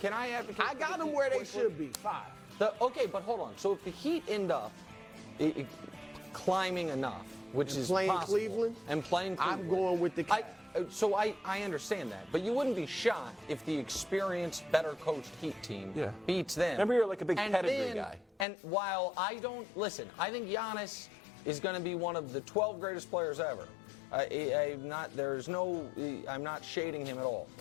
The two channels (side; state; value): right; drops out; at 18.4 s